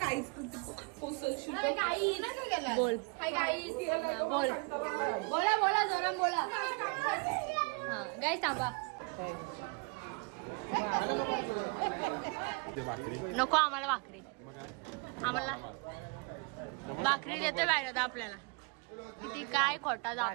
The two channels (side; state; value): left; quieter; 31.8 dB